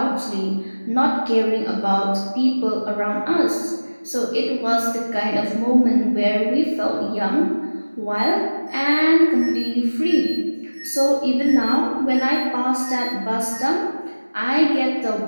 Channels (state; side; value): inverted; both; correlation -1.00